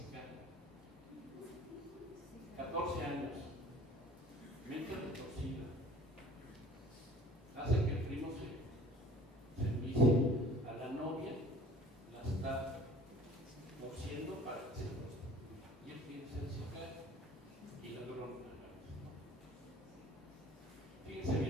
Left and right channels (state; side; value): normal; both; correlation 0.49